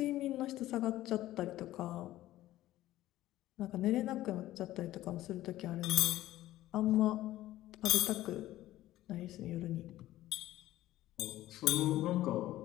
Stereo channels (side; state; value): right; quieter; 15.0 dB